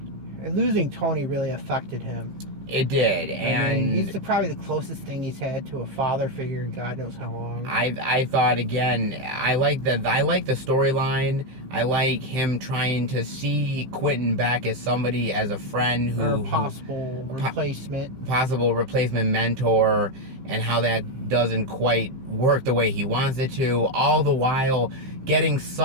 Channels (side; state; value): left; late; 15 ms